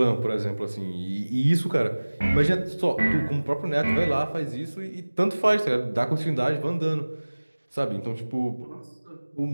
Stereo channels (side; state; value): both; inverted; correlation -1.00